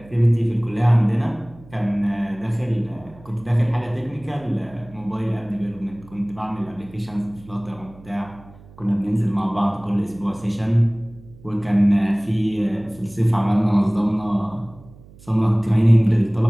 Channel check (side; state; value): right; noise; hum, 22 dB below the sound